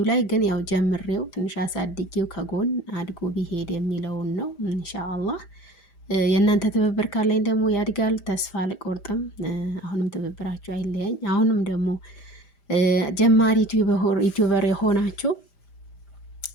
ላይ ግን ያው ጀምሬው ትንሽ አሳድጌው ከጎን አድጎ ቢሄድ የሚለውን ነው ኢንሻአላህ። የእናንተ ትብብር ካለኝ ደግሞ ያድጋል፣ ተስፋ አልቆርጥም። አሁንም ትብብራችሁ አይለያኝ። አሁንም ደግሞ ጀማሪ ዩቲዩበር የሆናችሁ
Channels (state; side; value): late; right; 5.0 ms